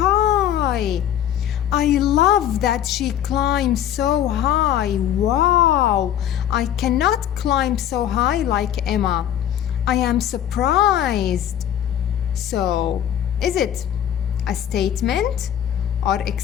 I love that she climbs so high. Wow! I cannot climb so high like Emma. I am surprised. So, is it a statement or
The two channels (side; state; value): right; quieter; 10.6 dB